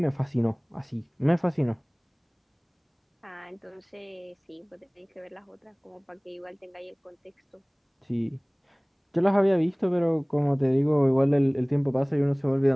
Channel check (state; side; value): identical; both; correlation 1.00